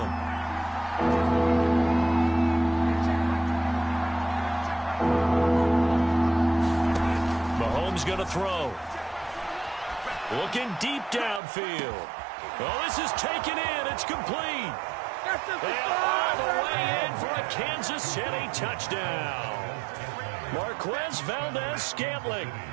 Mahomes going to throw. Looking deep downfield. Oh, this is taken in. It's complete. And all the way in for a Kansas City touchdown. Marquez Valdez-Scantling,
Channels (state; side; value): drops out; left; at 11.4 s